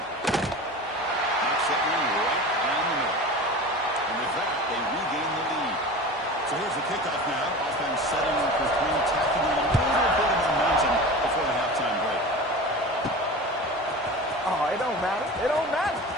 Knocks that one right down the middle. And with that, they regain the lead. So here's the kickoff now. Offense setting up for 3, tacking on a little bit of momentum before the halftime break. Oh, it don't matter. It don't matter.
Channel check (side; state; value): both; normal; correlation 0.33